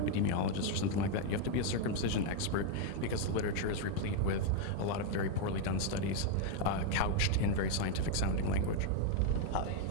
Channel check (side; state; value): both; different; correlation 0.00